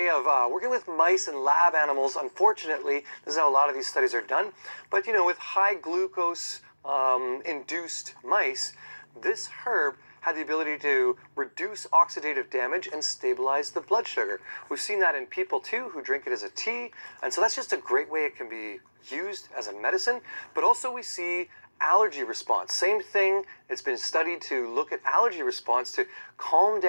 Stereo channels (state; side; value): inverted; both; correlation -1.00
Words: of working with mice and lab animals. Unfortunately, this is how a lot of these studies are done. But you know, with high glucose induced mice, this herb had the ability to reduce oxidative damage and stabilize the blood sugar. We've seen that in people too who drink it as a tea, and so that's just a great way it can be used as a medicine. But also we see allergy response. Same thing, it's been studied to look at allergy response to calm